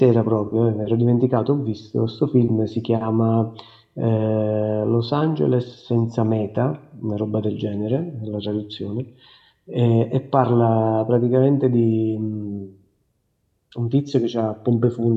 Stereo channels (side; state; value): both; identical; correlation 1.00